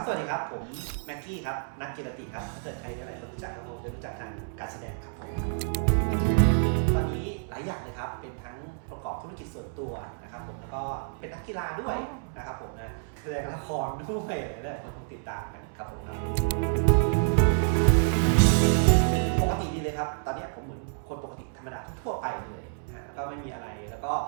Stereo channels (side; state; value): left; silent; 59 dB below the other